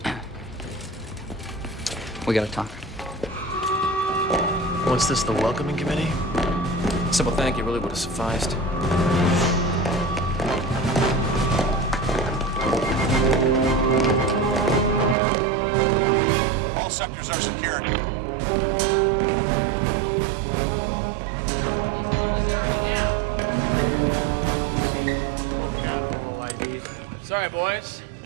We gotta talk. What's this, the welcoming committee? Simple thank you really would have sufficed. All sectors are secured. Let's move this area now. Sorry, boys.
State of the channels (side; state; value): left; drops out; at 15.2 s